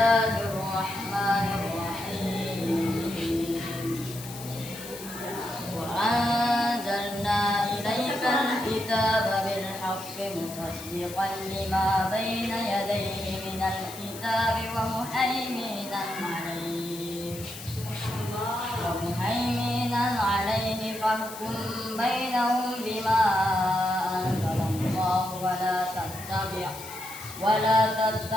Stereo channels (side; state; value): left; noise; hiss, 13 dB below the sound